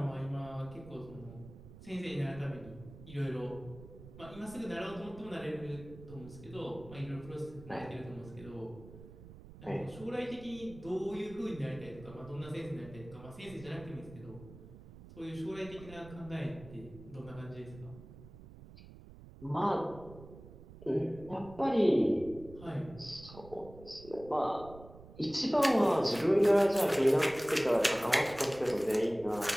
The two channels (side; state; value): right; noise; rumble, 17 dB below the sound